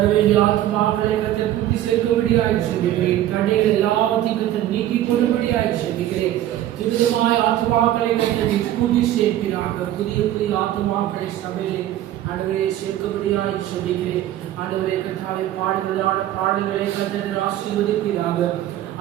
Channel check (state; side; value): quieter; left; 12.9 dB